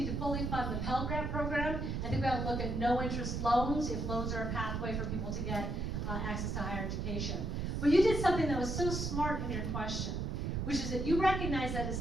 to fully fund the Pell Grant program. I think we ought to look at no interest loans if loans are a pathway for people to get access to higher education. But you did something that was so smart in your question, which is that you recognize that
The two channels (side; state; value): right; noise; rumble, 1 dB below the sound